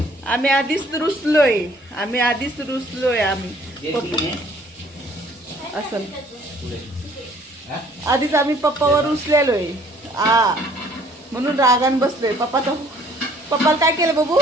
आम्ही आधीच रुसलोय. असं आधीच आम्ही पप्पावर रुसलेलोय. म्हणून रागान बसलोय. पप्पाला काय केलं बाबू?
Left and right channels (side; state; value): both; normal; correlation 0.58